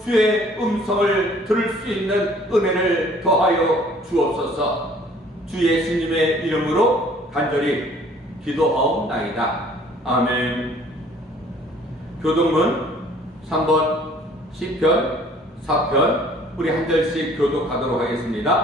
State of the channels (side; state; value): both; normal; correlation 0.55